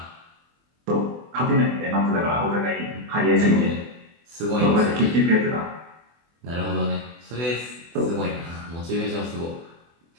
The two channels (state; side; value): late; left; 24 ms